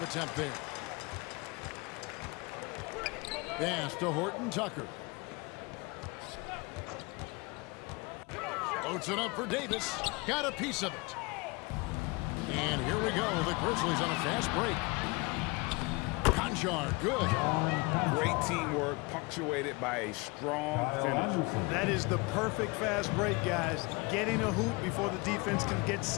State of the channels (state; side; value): quieter; right; 26.6 dB